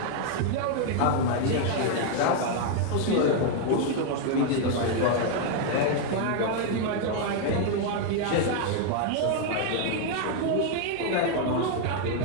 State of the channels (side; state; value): both; different; correlation 0.00